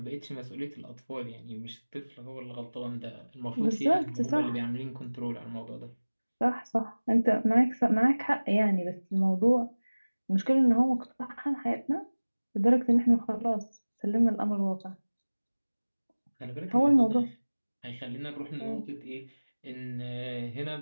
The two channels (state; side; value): inverted; both; correlation -1.00